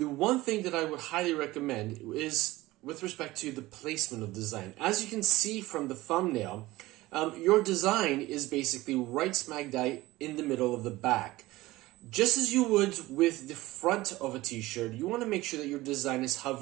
thing that I would highly recommend is with respect to the placement of design. As you can see from the thumbnail, your design is basically right smack dab in the middle of the back. Just as you would with the front of a t-shirt, you want to make sure that your design is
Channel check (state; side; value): quieter; left; 18.6 dB